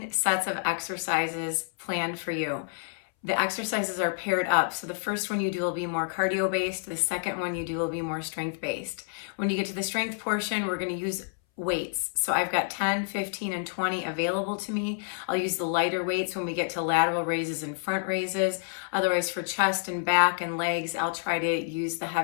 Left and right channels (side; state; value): right; silent; 59 dB below the other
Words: sets of exercises planned for you. The exercises are paired up, so the first one you do will be more cardio-based, the second one you do will be more strength-based. When you get to the strength portion, we're going to use weights. So I've got 10, 15, and 20 available to me. I'll use the lighter weights when we get to lateral raises and front raises. Otherwise, for chest and back and legs, I'll try to use the